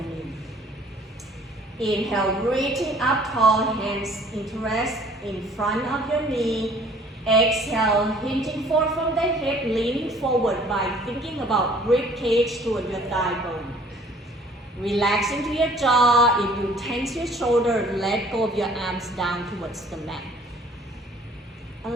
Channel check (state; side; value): normal; both; correlation 0.55